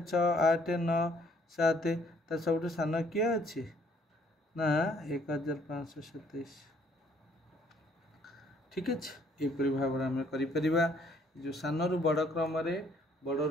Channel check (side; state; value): both; normal; correlation 0.63